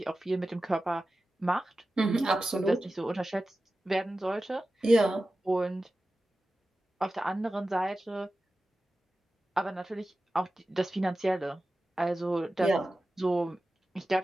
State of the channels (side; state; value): both; normal; correlation 0.94